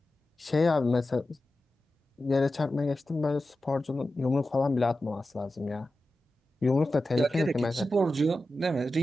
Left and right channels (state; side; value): normal; both; correlation 0.93